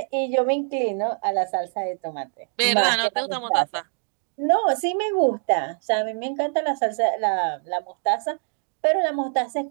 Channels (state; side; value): silent; left; 59 dB below the other